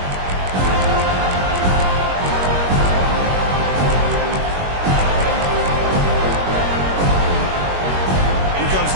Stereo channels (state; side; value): late; left; 21 ms